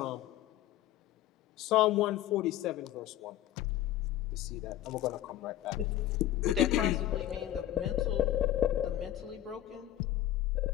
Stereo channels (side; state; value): right; quieter; 13.1 dB